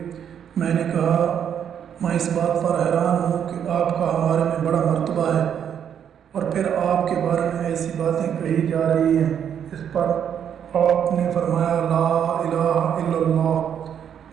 میں نے کہا، میں اس بات پر حیران ہوں کہ آپ کا ہمارے میں بڑا مرتبہ ہے اور پھر آپ کے بارے میں ایسی باتیں کہی جا رہی ہیں۔ اس پر آپ نے فرمایا، لا الہ الا اللہ،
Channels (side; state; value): left; quieter; 8.7 dB